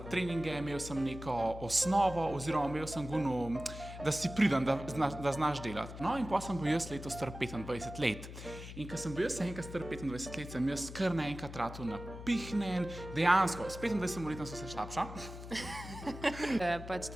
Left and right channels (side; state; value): left; noise; hum, 11 dB below the sound